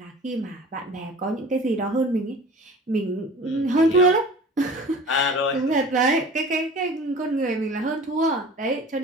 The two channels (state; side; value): normal; both; correlation 0.42